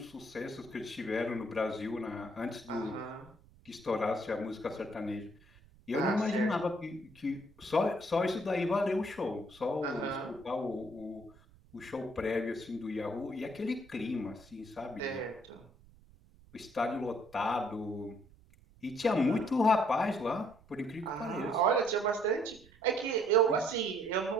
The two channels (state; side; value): noise; right; rumble, 25 dB below the sound